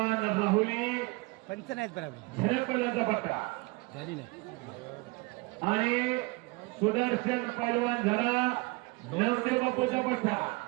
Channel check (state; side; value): quieter; left; 25.8 dB